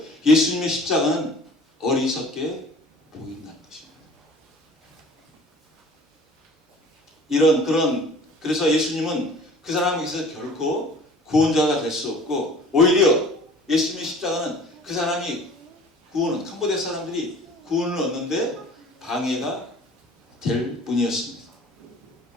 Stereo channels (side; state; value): both; normal; correlation 0.47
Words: 예수님의 십자가는 어리석게 보인다는 것입니다. 그래서 예수님은 그 사람에게 있어서 결코 구원자가 될 수 없고 오히려 예수님의 십자가는 그 사람이 캄보디아 사람들이 구원을 얻는데 방해가 될 뿐이었습니다.